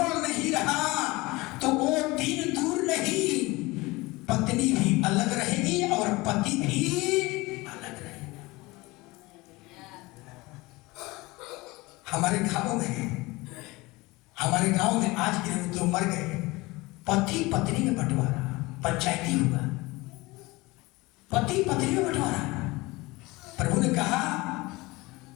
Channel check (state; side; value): quieter; right; 22.2 dB